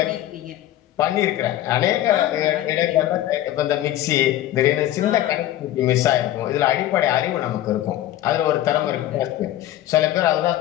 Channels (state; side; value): quieter; right; 13.5 dB